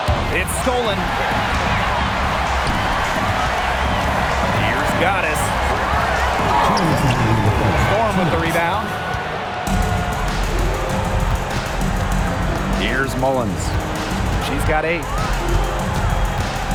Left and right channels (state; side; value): identical; both; correlation 1.00